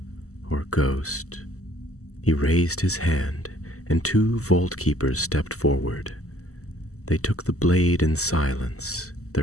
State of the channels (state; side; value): late; right; 0.65 ms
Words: or ghost. He raised his hand, and 2 vault keepers stepped forward. They took the blade in silence,